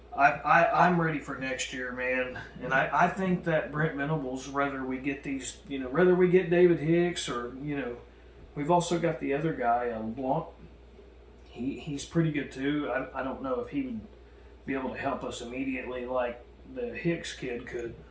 I'm ready for next year, man. And I think that Brent Venables, whether we get David Hicks or we've also got the other guy, Blanc. He's pretty good too. I don't know if he would be able to help us immediately like the Hicks kid could.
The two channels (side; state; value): both; identical; correlation 1.00